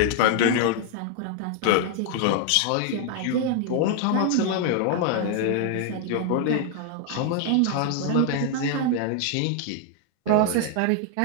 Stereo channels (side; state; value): both; different; correlation 0.00